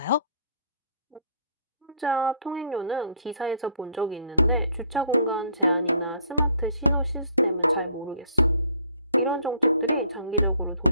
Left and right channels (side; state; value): both; inverted; correlation -0.60